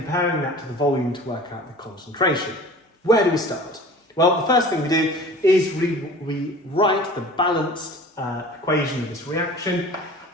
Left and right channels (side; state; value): both; normal; correlation 0.42